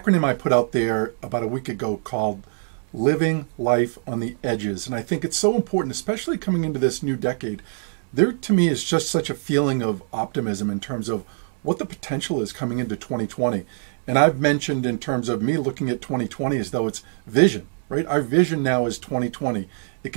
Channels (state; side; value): silent; left; digital silence